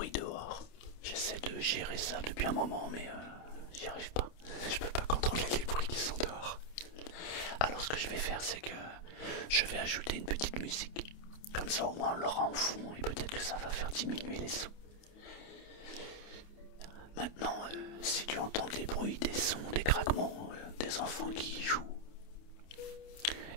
dehors. J'essaie de gérer ça depuis un moment, mais j'y arrive pas. Je peux pas contrôler les bruits qui sont dehors. Alors ce que je vais faire, c'est que je vais ajouter une petite musique. Comme ça au moins on l'aura en fond et peut-être que ça va faire diminuer les sons. Maintenant, si tu entends des bruits, des sons, des craquements, des enfants qui jouent,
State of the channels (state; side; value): late; right; 28 ms